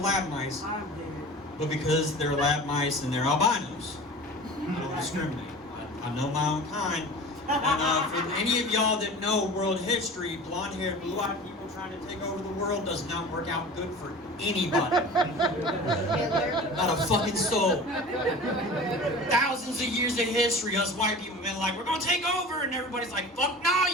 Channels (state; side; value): normal; both; correlation 0.38